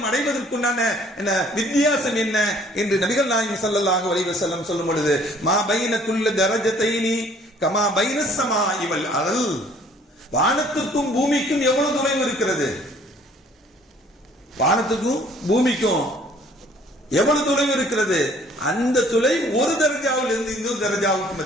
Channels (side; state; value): both; normal; correlation 0.57